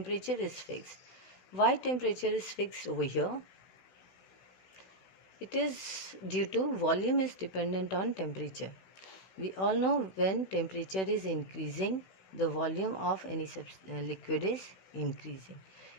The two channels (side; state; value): right; late; 16 ms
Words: is fixed. Why temperature is fixed over here? It is due to volume is dependent on temperature. We all know when temperature is increasing, the volume of any liquid is increasing.